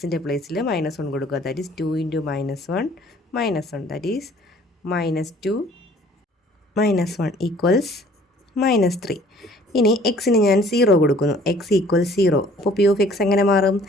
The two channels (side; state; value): both; normal; correlation 0.55